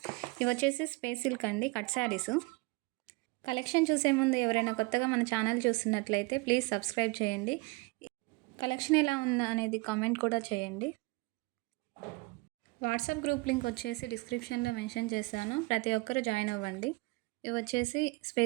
ఇవి వచ్చేసి స్పేస్ సిల్క్ అండి, కట్ శారీస్. కలెక్షన్ చూసే ముందు ఎవరైనా కొత్తగా మన ఛానల్ చూస్తున్నట్లయితే ప్లీజ్ సబ్స్క్రైబ్ చేయండి. కలెక్షన్ ఎలా ఉందా అనేది కామెంట్ కూడా చేయండి. వాట్సాప్ గ్రూప్ లింక్ వచ్చేసి డిస్క్రిప్షన్లో మెన్షన్ చేశాను, ప్రతి ఒక్కరు జాయిన్ అవ్వండి. ఇవి వచ్చేసి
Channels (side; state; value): left; quieter; 25.2 dB